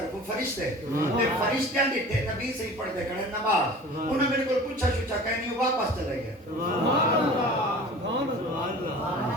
فرشتے تے فرشتیاں دی تے نبی سے ہی پڑھ دے کھڑے نماز انہوں نے میرے کو پوچھا شوچا کہنی واپس چلے گئے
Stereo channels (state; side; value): normal; both; correlation 0.41